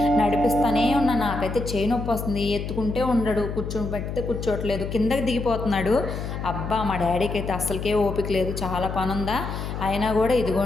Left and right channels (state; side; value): noise; left; hum, 5 dB below the sound